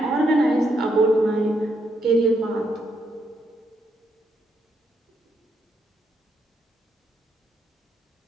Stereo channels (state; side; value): normal; both; correlation 0.78